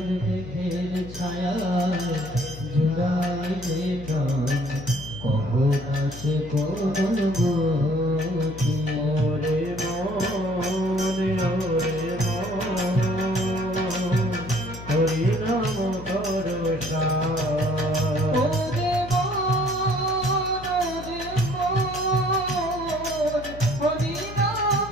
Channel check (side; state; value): left; noise; hum, 13 dB below the sound